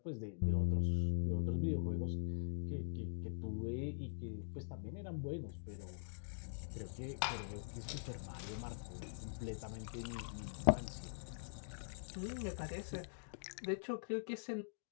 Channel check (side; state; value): right; silent; digital silence